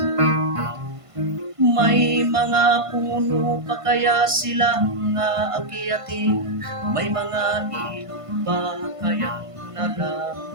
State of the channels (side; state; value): left; late; 1.5 ms